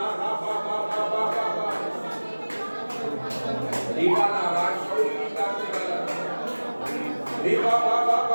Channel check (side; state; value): both; inverted; correlation -1.00